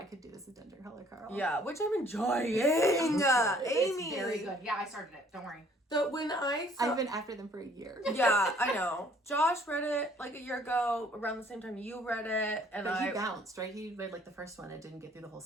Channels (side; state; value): both; normal; correlation 0.59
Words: this as Dungeon Crawler Carl. Yeah, which I'm enjoying. It's Aimee. very good. Yeah, I started it. Don't worry. So when I've been after them for a year. Yeah, I know. Josh read it like a year ago, around the same time you read it, and But he bounced, right? He read like the first one and didn't get through the whole